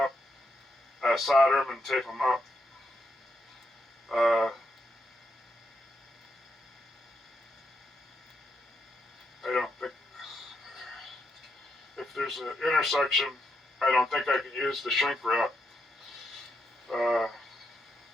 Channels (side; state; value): both; normal; correlation 0.81